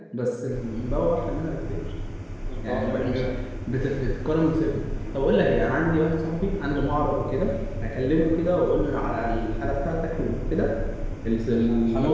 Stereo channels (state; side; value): identical; both; correlation 1.00